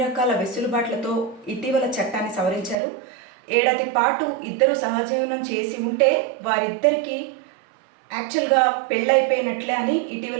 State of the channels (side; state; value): left; drops out; at 2.8 s